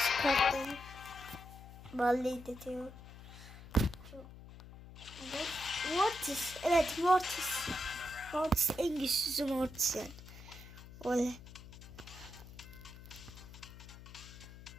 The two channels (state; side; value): noise; left; hum, 16 dB below the sound